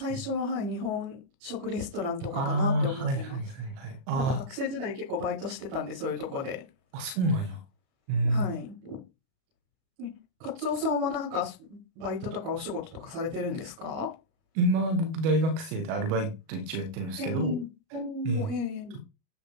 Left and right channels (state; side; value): late; left; 37 ms